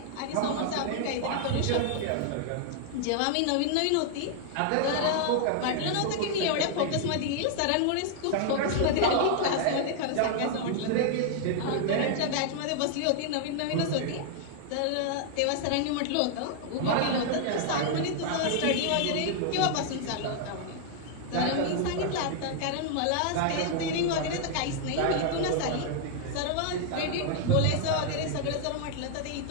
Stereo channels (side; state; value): both; different; correlation 0.00